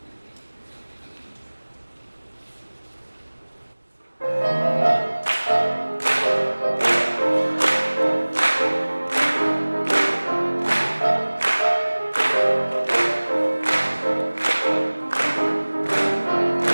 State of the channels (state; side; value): inverted; both; correlation -1.00